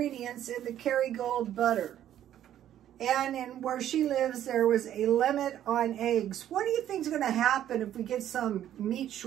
in the Kerrygold butter. And in where she lives, there was a limit on eggs. What do you think is going to happen if we get some meat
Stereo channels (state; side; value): quieter; left; 11.4 dB